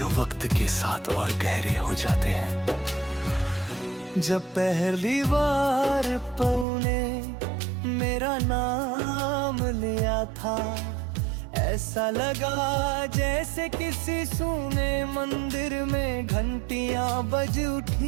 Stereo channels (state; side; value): drops out; left; at 6.7 s